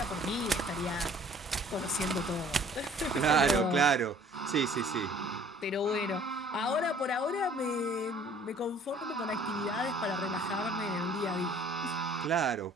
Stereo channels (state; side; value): normal; both; correlation 0.54